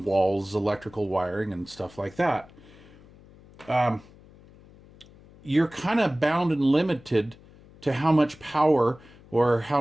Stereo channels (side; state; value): left; noise; hum, 24 dB below the sound